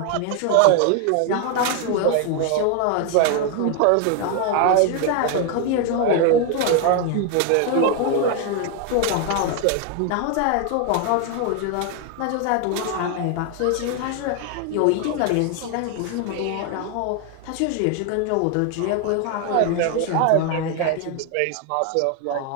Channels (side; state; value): both; different; correlation 0.01